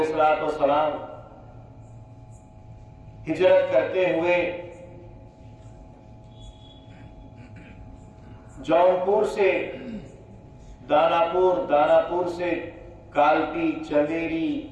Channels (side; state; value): both; identical; correlation 1.00